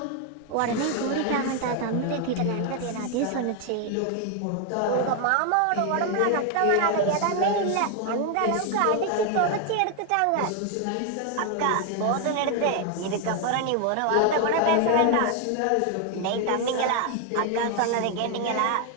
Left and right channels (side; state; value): both; different; correlation 0.01